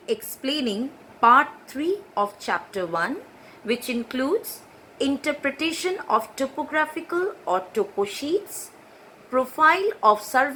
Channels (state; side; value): identical; both; correlation 1.00